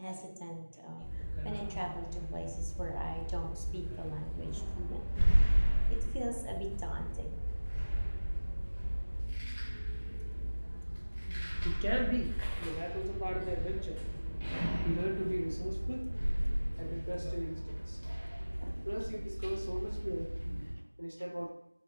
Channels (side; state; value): both; inverted; correlation -1.00